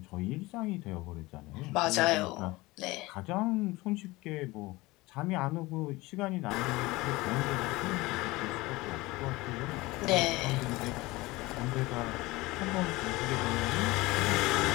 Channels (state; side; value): quieter; right; 21.1 dB